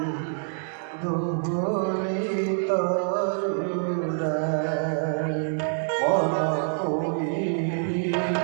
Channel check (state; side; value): silent; left; digital silence